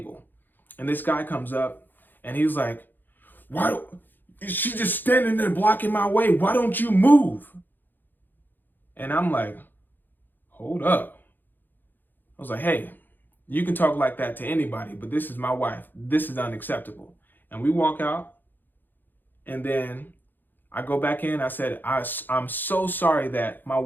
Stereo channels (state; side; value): late; right; 0.090 ms